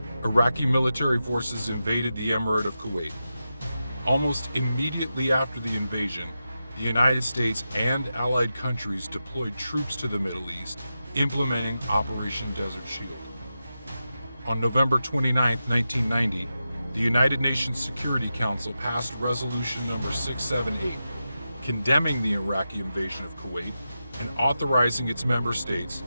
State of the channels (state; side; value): inverted; both; correlation -0.90